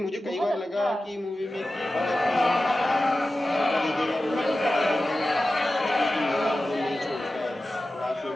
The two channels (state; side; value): normal; both; correlation 0.94